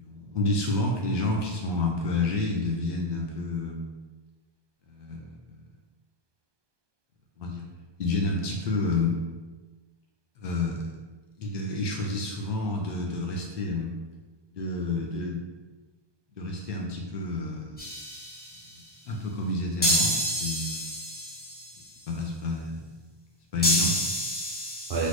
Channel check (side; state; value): left; late; 1.2 ms